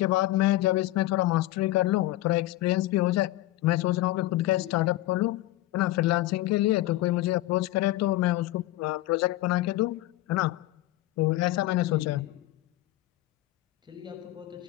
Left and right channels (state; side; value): quieter; right; 16.7 dB